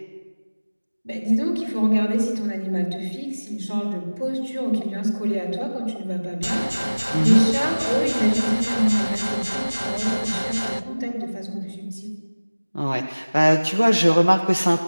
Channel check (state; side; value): inverted; both; correlation -1.00